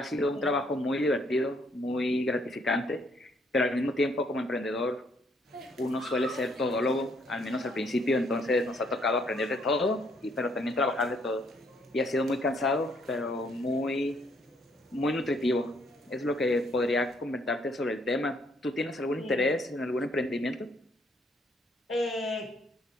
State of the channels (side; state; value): both; normal; correlation 0.68